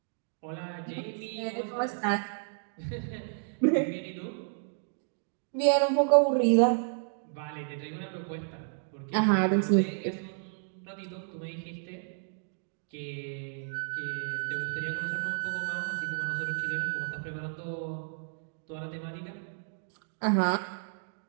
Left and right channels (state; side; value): silent; left; digital silence